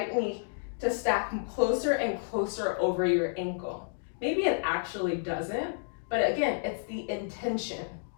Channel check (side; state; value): right; silent; digital silence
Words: knee to stack closer and closer over your ankle? Maybe it actually doesn't, but again, it's the intention.